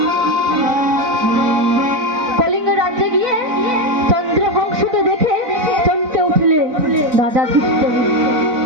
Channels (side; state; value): left; late; 4.0 ms